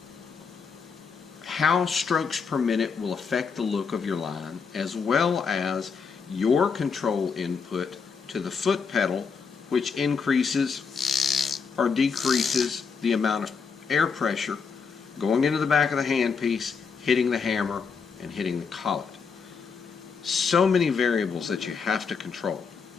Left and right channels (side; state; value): right; quieter; 5.6 dB